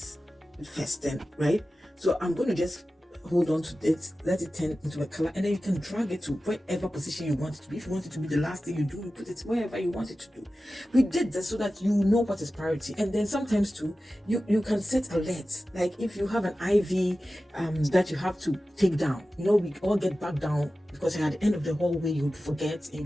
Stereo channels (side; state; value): both; normal; correlation 0.95